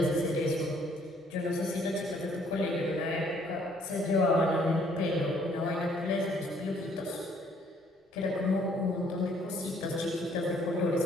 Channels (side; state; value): both; normal; correlation 0.63